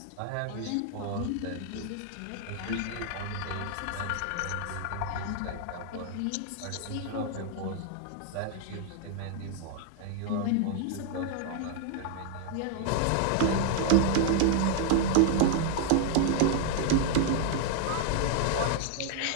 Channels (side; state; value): both; different; correlation 0.00